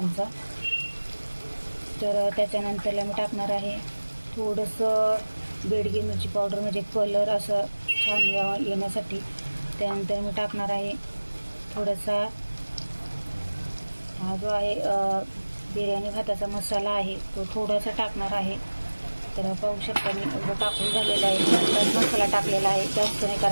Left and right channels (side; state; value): both; inverted; correlation -1.00